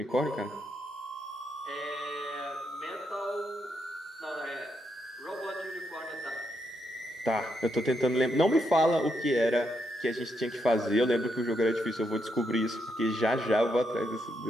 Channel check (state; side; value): normal; both; correlation 0.80